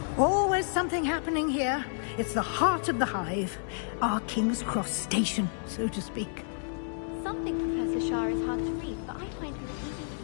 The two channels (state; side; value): silent; right; digital silence